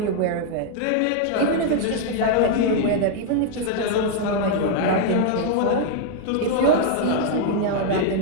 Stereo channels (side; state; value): both; different; correlation 0.00